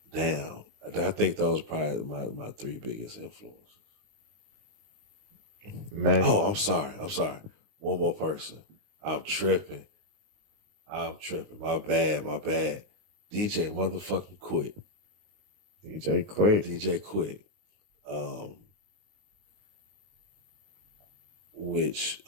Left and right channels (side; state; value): left; late; 19 ms